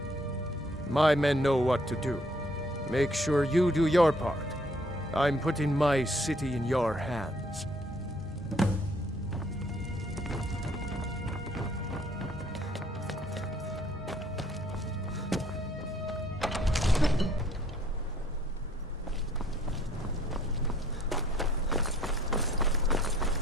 My men know what to do. Make sure you do your part. I'm putting my city in your hands.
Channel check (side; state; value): both; normal; correlation 0.62